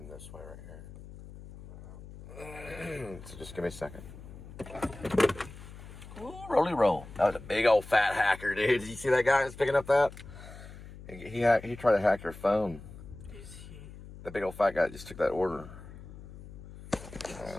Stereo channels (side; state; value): left; noise; hum, 15 dB below the sound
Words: this way right here. So just give me a second. Ooh, roly roll. That was a big old fat hacker, dude. Did you see that guy that's picking up that? He tried to hack your phone. Is he? The big old fat guy just took that order.